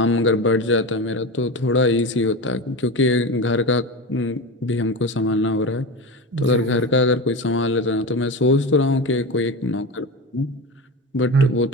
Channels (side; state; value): both; normal; correlation 0.23